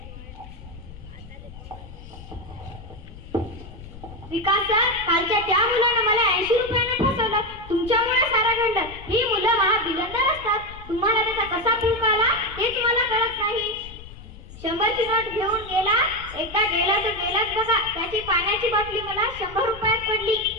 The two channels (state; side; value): noise; left; rumble, 16 dB below the sound